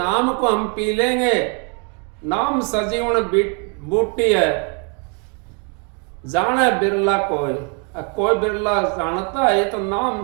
को हम पी लेंगे, नाम सजीवन बूटी है, जाने बिरला कोई बिरला जानता है। तो नाम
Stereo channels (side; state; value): left; quieter; 37.6 dB